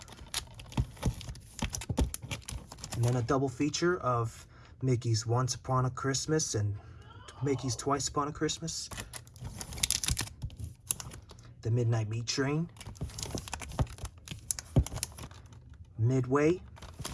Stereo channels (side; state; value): both; identical; correlation 1.00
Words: and then a double feature of Mickey's Once Upon a Christmas and Mickey's Twice Upon a Christmas, The Midnight Meat Train, Midway,